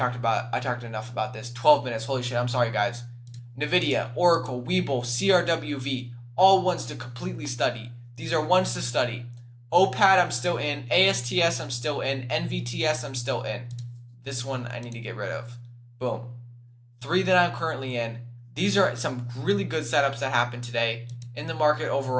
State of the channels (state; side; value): identical; both; correlation 1.00